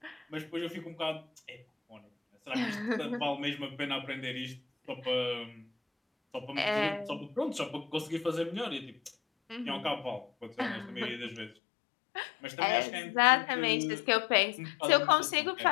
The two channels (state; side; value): drops out; right; at 11.5 s